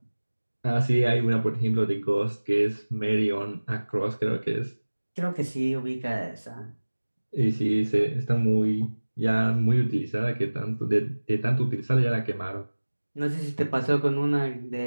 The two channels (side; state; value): both; inverted; correlation -1.00